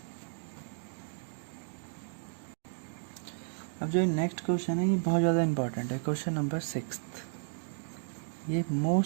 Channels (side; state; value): left; silent; digital silence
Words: अब जो नेक्स्ट क्वेश्चन है ये बहुत ज़्यादा इंपॉर्टेंट है, क्वेश्चन नंबर 6। ये